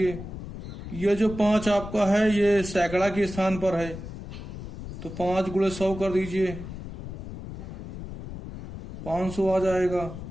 ये जो 5 आपका है ये सैकड़ा के स्थान पर है, तो 5 गुणे 100 कर दीजिए, 500 आ जाएगा।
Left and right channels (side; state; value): left; noise; rumble, 10 dB below the sound